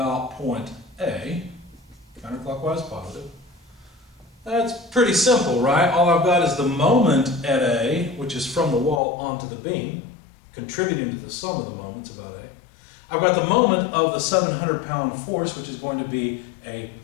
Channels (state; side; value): drops out; right; at 9.0 s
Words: point A, counterclockwise positive, that's pretty simple, right? All I've got is the moment at A, which is from the wall onto the beam, contributing to the sum of the moments about A. I've got the moment of the 700-pound force, which is going to be a